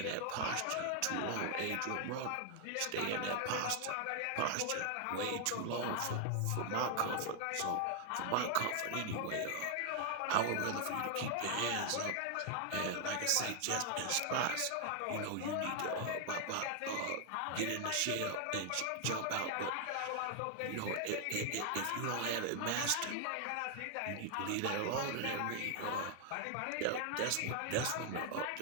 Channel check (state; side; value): different; both; correlation 0.00